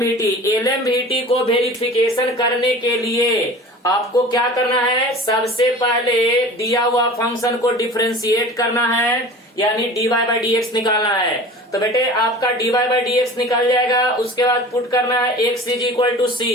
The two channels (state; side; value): normal; both; correlation 0.40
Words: एलएमवीटी को वेरिफिकेशन करने के लिए आपको क्या करना है, सबसे पहले दिया हुआ फंक्शन को डिफरेंशिएट करना है, यानी d y by d x निकालना है। तो बेटे आपका d y by d x निकल जाएगा। उसके बाद पुट करना है x is equal to c.